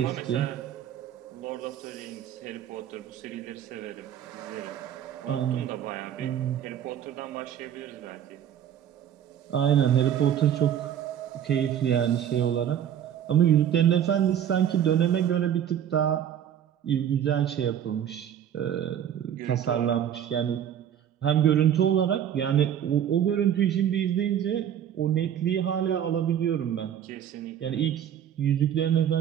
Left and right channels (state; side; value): quieter; left; 9.8 dB